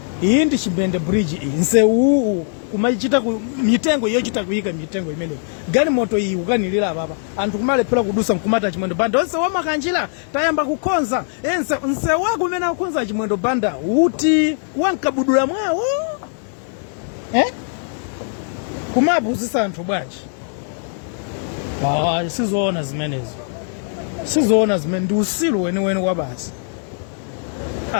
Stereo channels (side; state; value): right; silent; digital silence